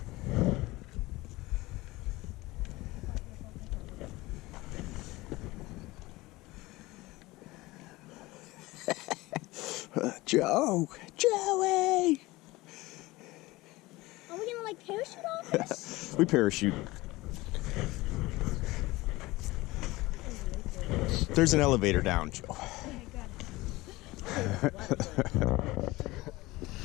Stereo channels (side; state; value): right; quieter; 20.2 dB